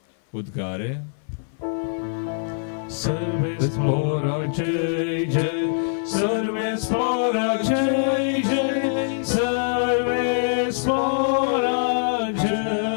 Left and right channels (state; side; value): silent; right; 59 dB below the other